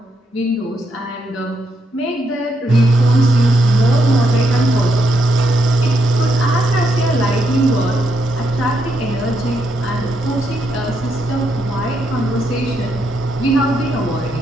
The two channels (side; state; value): both; normal; correlation 0.79